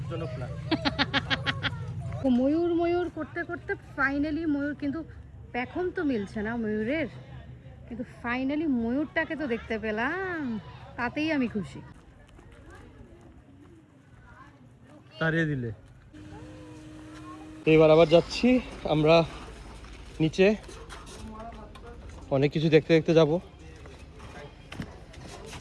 ময়ূর ময়ূর করতে করতে ফাইনালি ময়ূর, কিন্তু পেখম তো মিলছে না ময়ূরের, কিন্তু ফাইনালি ময়ূরটাকে তো দেখতে পেলাম, তাতেই আমি খুশি। তাড়িয়ে দিলে। এবার আবার যাচ্ছি আমরা নিচে, অনেক কিছু দেখতে দেখতে যাবো।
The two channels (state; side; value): identical; both; correlation 1.00